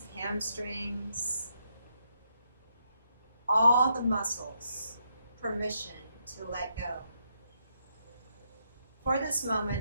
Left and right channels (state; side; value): inverted; both; correlation -0.78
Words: hamstrings, all the muscles, permission to let go. For this